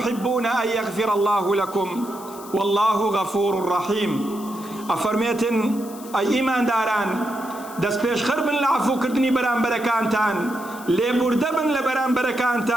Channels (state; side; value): noise; left; hiss, 18 dB below the sound